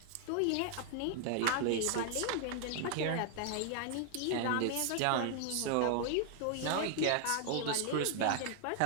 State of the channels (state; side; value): different; both; correlation 0.00